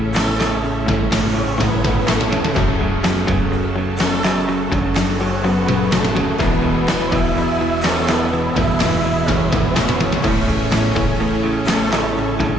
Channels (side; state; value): both; normal; correlation 0.74